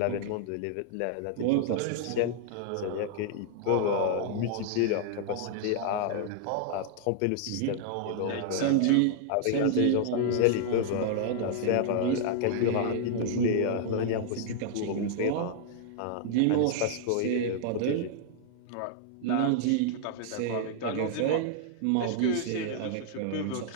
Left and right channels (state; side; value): different; both; correlation -0.01